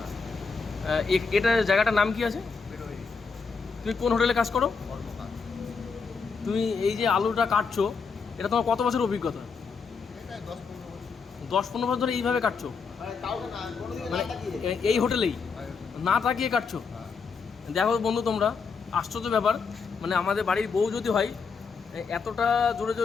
এটা জায়গাটার নাম কি আছে? বেরোই তুমি কোন হোটেলে কাজ করো? কর্মকার। তুমি এই যে আলুটা কাটছো, এটা তোমার কত বছর অভিজ্ঞতা? এটা 10-15 বছর। 10-15 বছর ধরে এইভাবে কাটছো? মানে কাউকে না, কোনোদিকে মানে না তাকিয়ে। এই হোটেলেই না তাকিয়ে কাটছো? হ্যাঁ। দেখো বন্ধু, তোমরা আশ্চর্য ব্যাপার, মানে আমাদের বাড়ির বউ যদি হয় এতটা জোরে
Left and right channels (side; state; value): right; quieter; 5.3 dB